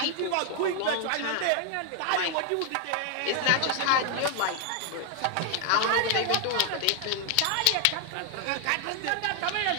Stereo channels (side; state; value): both; different; correlation 0.00